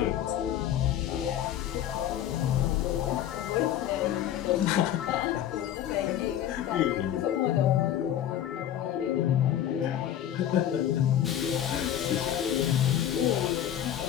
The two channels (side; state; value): right; quieter; 11.0 dB